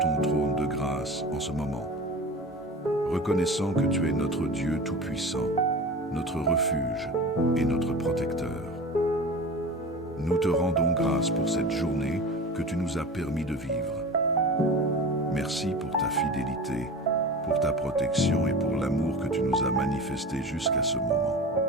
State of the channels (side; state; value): both; normal; correlation 0.33